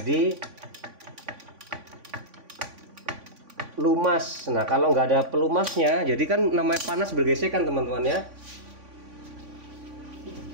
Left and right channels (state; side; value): late; left; 3.5 ms